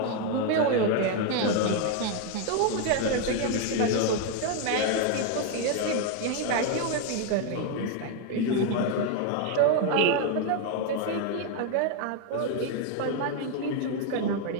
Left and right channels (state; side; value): different; both; correlation 0.01